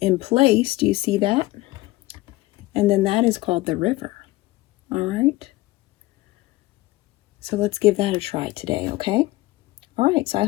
in place. Do you see that? And then that is called the river. All right. So let's give that a try today, okay? All right, so I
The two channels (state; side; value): quieter; right; 18.8 dB